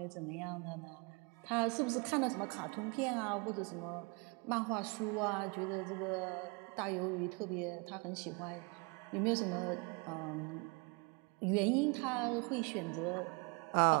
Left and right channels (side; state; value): left; quieter; 30.7 dB